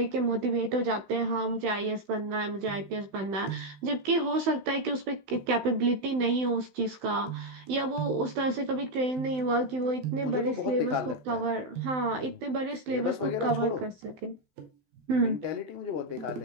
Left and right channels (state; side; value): late; left; 16 ms